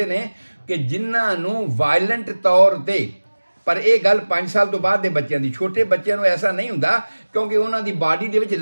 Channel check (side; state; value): both; inverted; correlation -1.00